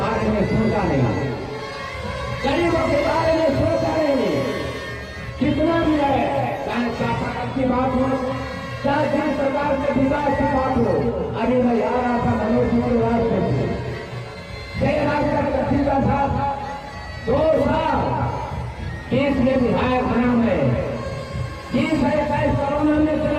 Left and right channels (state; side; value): identical; both; correlation 1.00